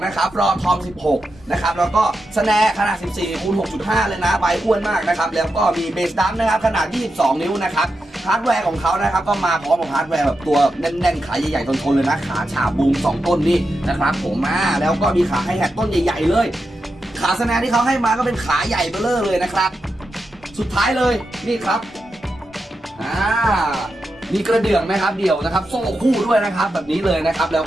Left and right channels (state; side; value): normal; both; correlation 0.88